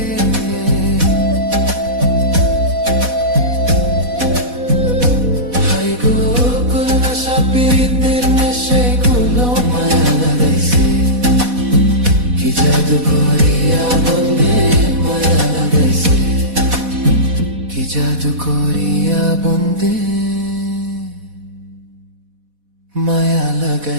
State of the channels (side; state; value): left; late; 4.1 ms